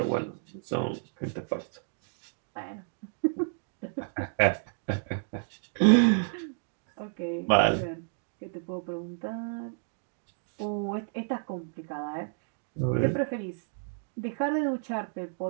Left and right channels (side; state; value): left; silent; digital silence